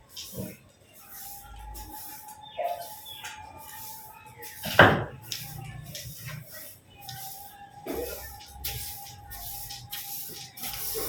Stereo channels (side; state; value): both; identical; correlation 1.00